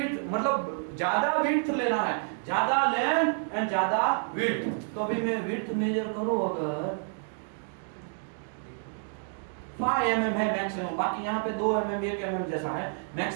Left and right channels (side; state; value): left; silent; 58 dB below the other